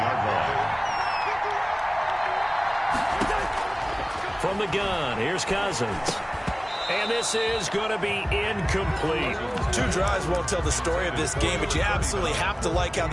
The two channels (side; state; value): both; identical; correlation 1.00